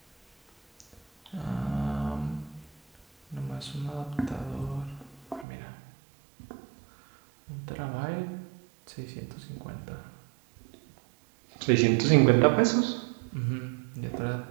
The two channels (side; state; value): left; drops out; at 5.5 s